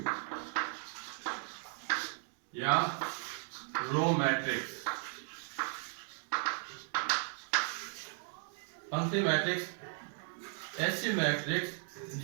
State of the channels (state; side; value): silent; left; 54 dB below the other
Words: या रो मैट्रिक्स। पंक्ति मैट्रिक्स ऐसी मैट्रिक्स